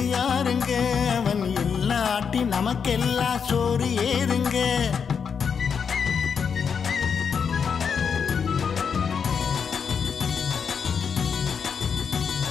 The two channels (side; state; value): right; quieter; 6.5 dB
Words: யாருங்க? அவன் இல்லாட்டி நமக்கெல்லாம் சோறு ஏறுங்க.